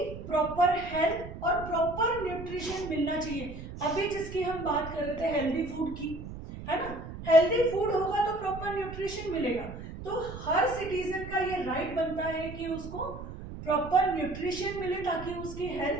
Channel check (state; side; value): noise; right; rumble, 11 dB below the sound